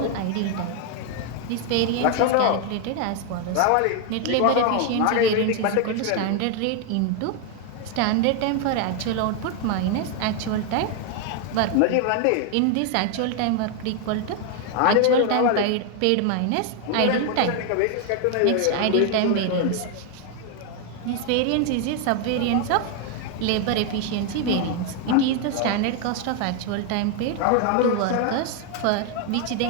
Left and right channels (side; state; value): both; different; correlation 0.01